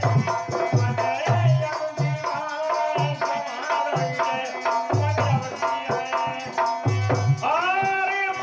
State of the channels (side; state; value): both; identical; correlation 1.00